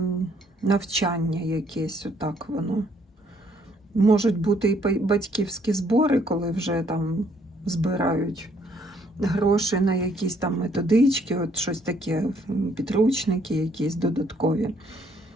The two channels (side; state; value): both; normal; correlation 0.66